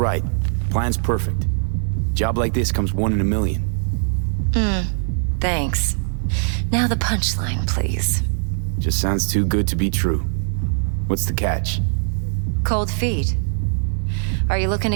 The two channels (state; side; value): silent; left; digital silence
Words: Plan's perfect. Job like this comes 1 in a million. Thanks. Now the punchline, please. Just sounds too good to be true. What's the catch? Cold feet. Are you looking to